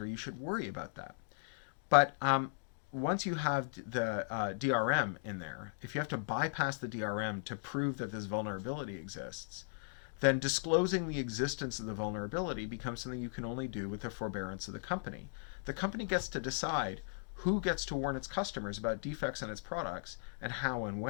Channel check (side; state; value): right; silent; digital silence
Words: you should worry about that. But once you have the DRM in there, if you have to bypass the DRM to prove that this vulnerability exists, then disclosing the existence of the vulnerability becomes something you can only do with the forbearance of the company. The company gets to decide who gets to warn its customers about defects in its products and how and